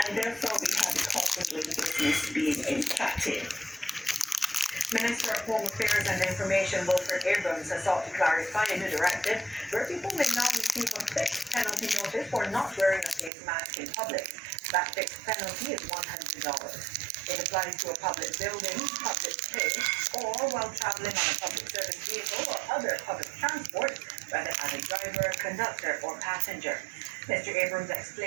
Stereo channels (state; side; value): drops out; left; at 13.3 s